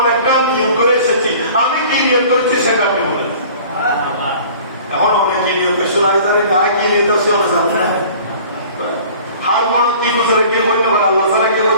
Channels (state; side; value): inverted; both; correlation -0.47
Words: একটা নিয়ত করে এসেছি, আমি কি নিয়ত করেছি সেটা আপনি বলেন। এখন অনেক কি নিয়ত শোনাই জানি না, কি নিয়ত আছে অনেক জানি না। হার মনে কি গুজরে কি হইতে পারে, আল্লাহ ছাড়া কি